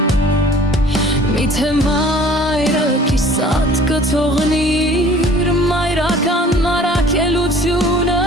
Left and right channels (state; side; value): normal; both; correlation 0.50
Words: միթե մայրը կիսատ կթողնիր մայրական առաքելությունը